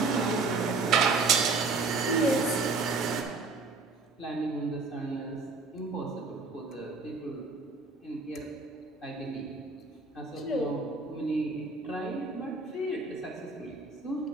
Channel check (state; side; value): quieter; left; 3.9 dB